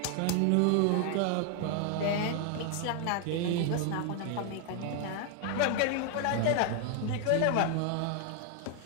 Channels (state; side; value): different; both; correlation 0.00